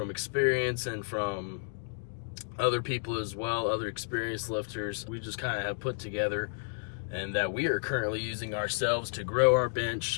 experience and from other people as well, other experienced lifters. We just kind of have put together and that we are currently using ourselves to grow our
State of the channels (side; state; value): right; silent; digital silence